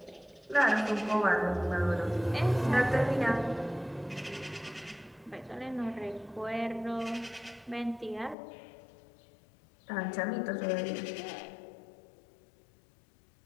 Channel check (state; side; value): drops out; right; at 8.3 s